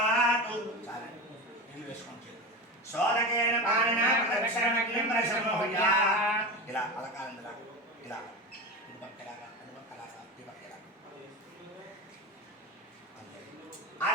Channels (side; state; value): both; normal; correlation 0.23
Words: నీళ్ళు వేసుకోండి సోదకేన పాలనా ప్రదక్షిణమగ్నిం ప్రశమోహయా ఇలా అలకాలండి ఇలా ఇది పక్కలాగా అది పక్కలాగా ఇది పక్కలాగా